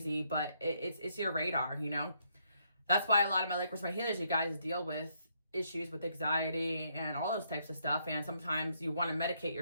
but it's your radar, you know. That's why a lot of my Lightworkers, my healers, you guys deal with issues with anxiety and all those types of stuff. And sometimes you want to medicate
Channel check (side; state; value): both; inverted; correlation -0.74